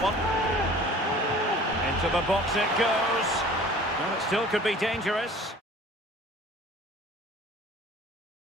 one. Into the box it goes. Well, it still could be dangerous.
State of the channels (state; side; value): normal; both; correlation 0.46